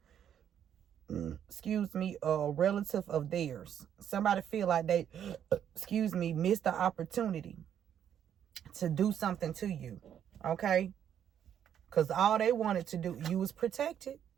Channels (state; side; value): quieter; left; 9.4 dB